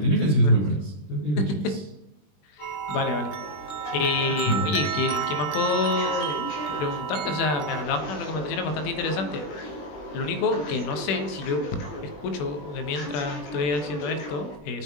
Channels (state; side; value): late; right; 20 ms